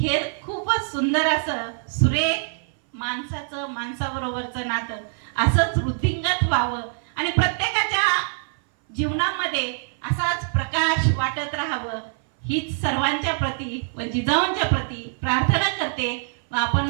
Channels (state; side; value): silent; left; 59 dB below the other